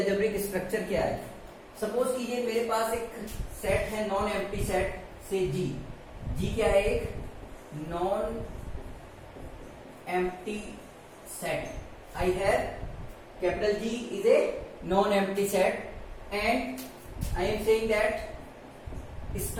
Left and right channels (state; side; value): identical; both; correlation 1.00